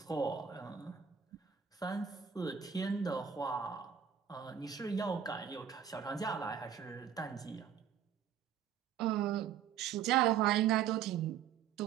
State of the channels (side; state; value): left; quieter; 8.4 dB